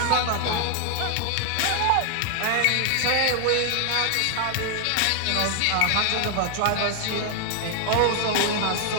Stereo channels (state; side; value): different; both; correlation 0.00